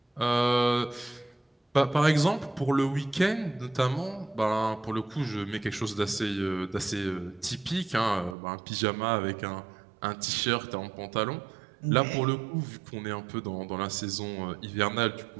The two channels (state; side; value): drops out; left; at 8.3 s